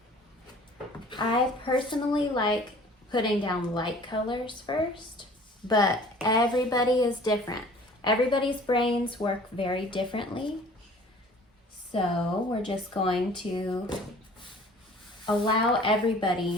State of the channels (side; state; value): both; normal; correlation 0.49